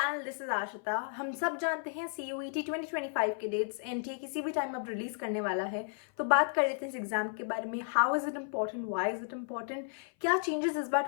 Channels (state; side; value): silent; right; 55 dB below the other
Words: This is Ashita. हम सब जानते हैं CUET 2025 के डेट्स एनटीए किसी भी टाइम अब रिलीज करने वाला है। तो बात कर लेते हैं इस एग्जाम के बारे में। How is it important, why is it important, क्या चेंजेस इस बार